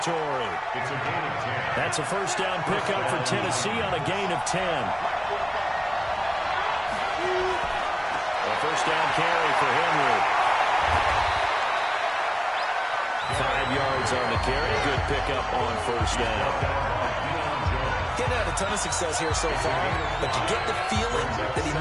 It's a gain of 10. That's a first down pickup for Tennessee on a gain of 10. A first down carry for Henry. 5 yards on the carry. Good pickup on first down. Getting had a ton of success here so far, but you get the feeling that he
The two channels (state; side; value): identical; both; correlation 1.00